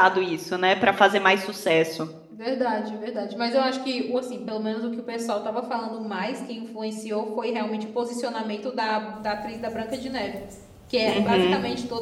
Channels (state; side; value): identical; both; correlation 1.00